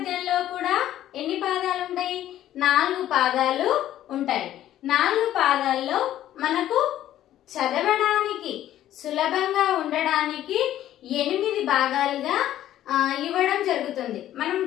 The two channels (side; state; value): right; quieter; 12.5 dB